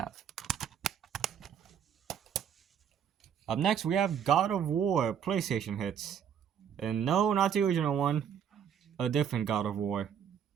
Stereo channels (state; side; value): quieter; left; 8.4 dB